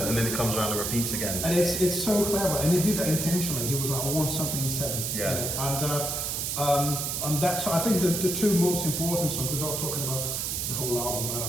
and then it comes around and repeats again. And it's so clever, and he did that intentionally. He was like, I want something in 7. Yeah. You know? And that's, so I think the 2 most important songs, we're not talking about the whole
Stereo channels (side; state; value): right; noise; hiss, 1 dB below the sound